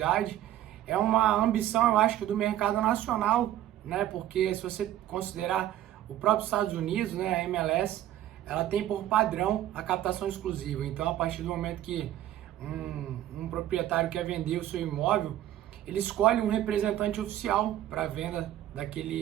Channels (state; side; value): quieter; left; 12.8 dB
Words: É uma ambição, eu acho, que do mercado nacional, né? Porque se você considerar o próprio Estados Unidos, né, a MLS, ela tem por padrão a captação exclusiva. Então, a partir do momento que um proprietário quer vender o seu imóvel, ele escolhe um representante oficial para a venda